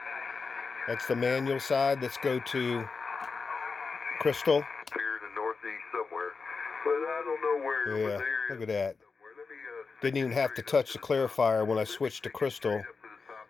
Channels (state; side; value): quieter; right; 4.7 dB